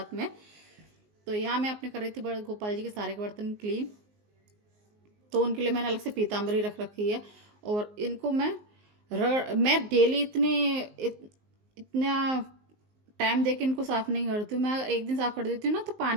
में। तो यहाँ मैं अपने कर रही थी बड़े गोपाल जी के सारे के बर्तन क्लीन, तो उनके लिए मैंने अलग से पीताम्बरी रख रखी है। और इनको मैं डेली इतना टाइम दे के इनको साफ नहीं करती हूँ। मैं एक दिन साफ कर देती हूँ ना तो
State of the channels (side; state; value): left; late; 19 ms